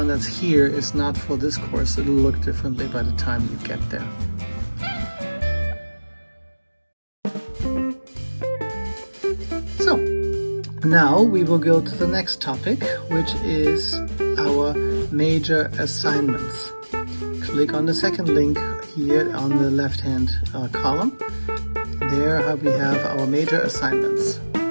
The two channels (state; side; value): inverted; both; correlation -1.00